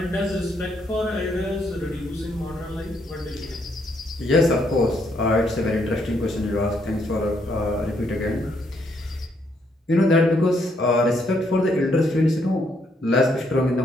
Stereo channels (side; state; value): both; normal; correlation 0.73